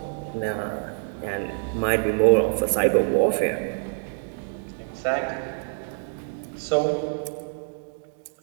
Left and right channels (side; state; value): left; silent; digital silence